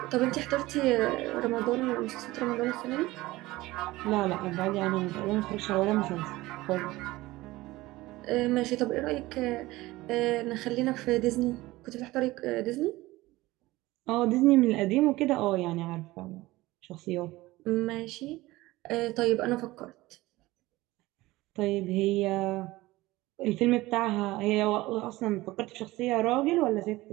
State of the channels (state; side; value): quieter; left; 19.0 dB